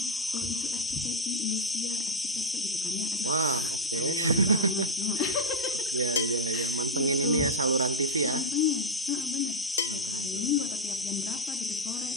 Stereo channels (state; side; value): normal; both; correlation 0.01